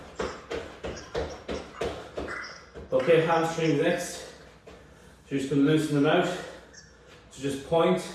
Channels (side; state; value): both; identical; correlation 1.00